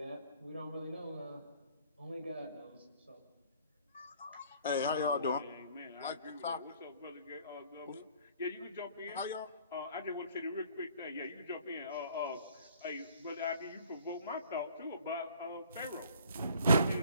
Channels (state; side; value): inverted; both; correlation -0.57